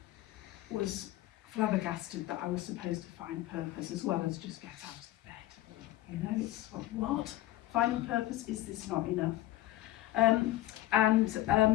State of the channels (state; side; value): quieter; right; 15.8 dB